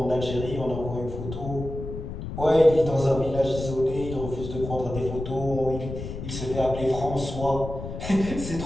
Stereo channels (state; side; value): noise; left; rumble, 8 dB below the sound